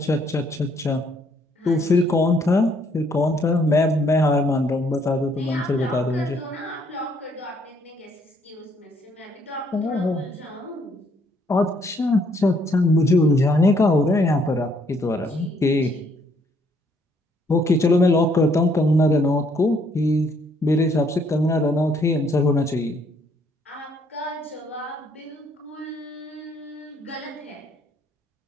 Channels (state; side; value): normal; both; correlation 0.68